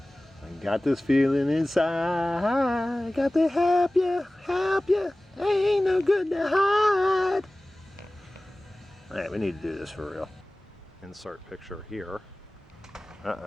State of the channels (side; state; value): both; normal; correlation 0.98